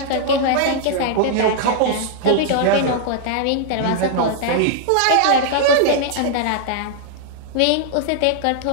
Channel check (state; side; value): different; both; correlation -0.01